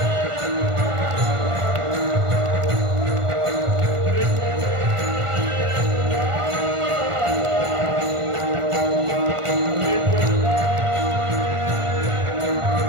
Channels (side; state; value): left; late; 1.5 ms